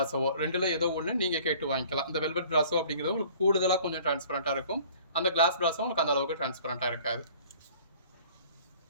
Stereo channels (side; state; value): both; inverted; correlation -0.52